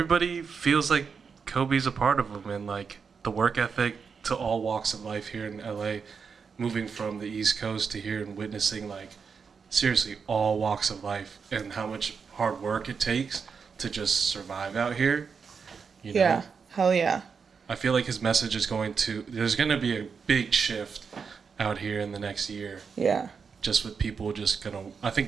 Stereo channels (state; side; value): quieter; left; 5.8 dB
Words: feels like Kobe's a part of him, and like the work ethic to all walks of life here in LA, moving from the East Coast to here and witnessing like seriously all walks of life and how much hard work it takes to just survive out here. Yeah, hell yeah. I feel like his message is there's going to be a big shift out here in the next year. Yeah. Just with people I think